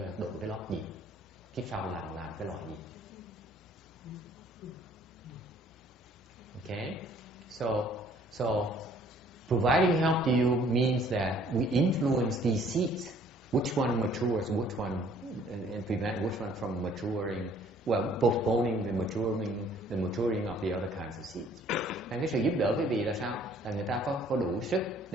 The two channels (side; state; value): both; normal; correlation 0.58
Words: độ cái lót gì, kiếp sau làm cái loài gì. Okay, so providing help to you means that we influence these seeds, which one matures, which one, and prevent which one from maturing, well, postponing the maturing of the other kinds of seeds. Nên cái sự giúp đỡ quý vị là sao? Là người ta có đủ sức